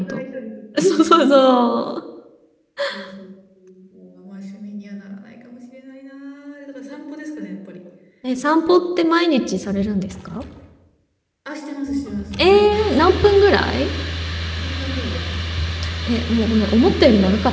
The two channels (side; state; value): both; identical; correlation 1.00